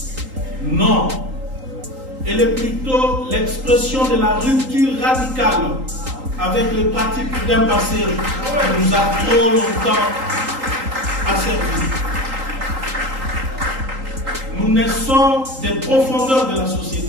Non, elle est plutôt l'expression de la rupture radicale avec les pratiques d'un passé qui nous a trop longtemps asservis. Nous naissons des profondeurs de la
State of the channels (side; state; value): left; late; 3.8 ms